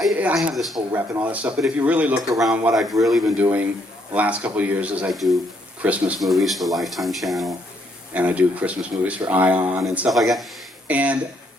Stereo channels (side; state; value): both; normal; correlation 0.71